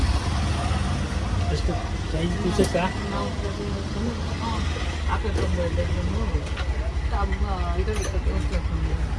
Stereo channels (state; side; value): identical; both; correlation 1.00